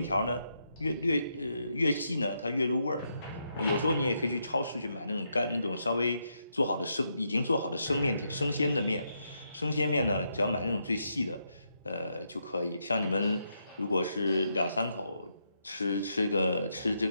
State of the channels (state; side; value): inverted; both; correlation -0.80